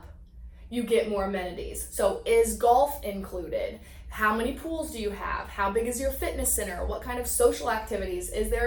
you get more amenities. So is golf included? How many pools do you have? How big is your fitness center? What kind of social activities? Is there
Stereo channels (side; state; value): both; identical; correlation 1.00